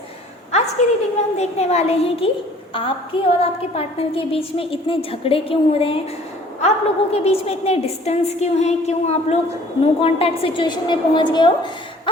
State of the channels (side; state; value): both; normal; correlation 0.53